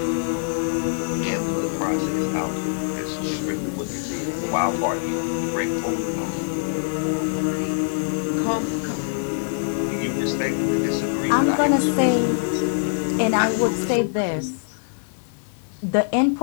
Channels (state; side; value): silent; right; digital silence